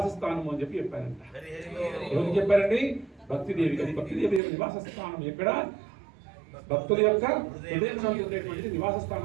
స్థానము అని చెప్పి చెప్పారంట. ఎవరికి చెప్పారండి? భక్తిదేవి. అది భక్తిదేవి యొక్క నివాస స్థానం ఎక్కడ? భక్తుల యొక్క హృదయంలో ఉండేటువంటి నివాస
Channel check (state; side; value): drops out; left; at 4.4 s